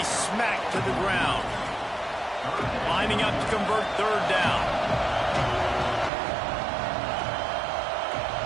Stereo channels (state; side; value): drops out; left; at 6.1 s